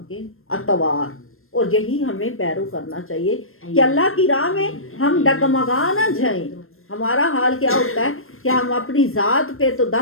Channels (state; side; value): late; right; 0.61 ms